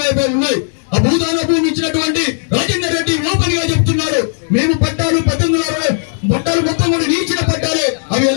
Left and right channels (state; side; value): silent; right; digital silence